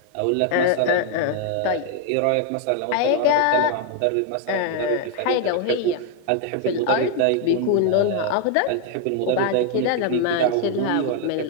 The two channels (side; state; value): both; different; correlation 0.00